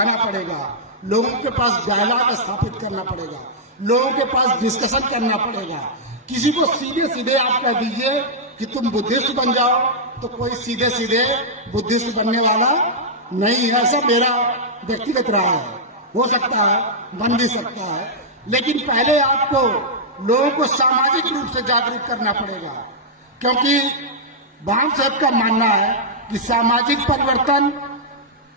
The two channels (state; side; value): normal; both; correlation -0.09